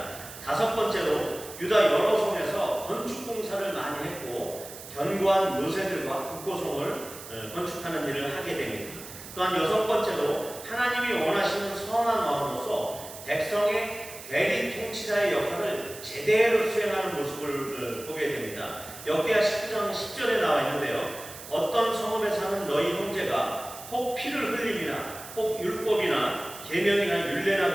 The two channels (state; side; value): noise; right; hiss, 14 dB below the sound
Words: 다섯 번째로 유다 여러 성에서 건축 공사를 많이 했고 견고한 요새들과 국고성을 건축하는 일을 하게 됩니다. 또한 여섯 번째로 하나님이 원하시는 선한 왕으로서 백성의 대리 통치자의 역할을 제대로 수행하는 모습을 보게 됩니다. 역대하 19장 10절에 나와 있는데요. 어떤 성읍에 사는 너희 형제가 혹 피를 흘림이나 혹 율법이나 계명이나